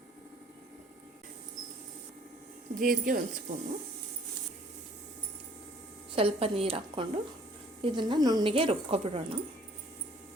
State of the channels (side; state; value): both; normal; correlation 0.56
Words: ಜೀರಿಗೆ 1 ಸ್ಪೂನು, ಸ್ವಲ್ಪ ನೀರು ಹಾಕ್ಕೊಂಡು ಇದನ್ನು ನುಣ್ಣಗೆ ರುಬ್ಕೊಬಿಡೋಣ.